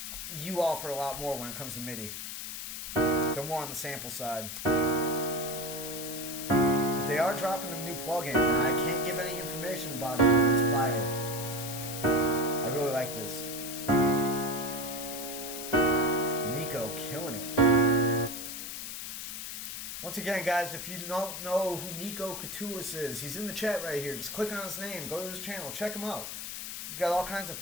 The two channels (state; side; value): noise; left; hiss, 7 dB below the sound